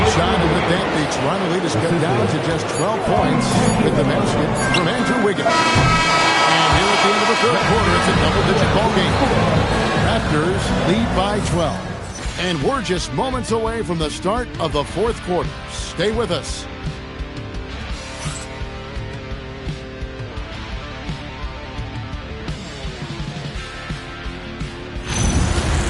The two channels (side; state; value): both; identical; correlation 1.00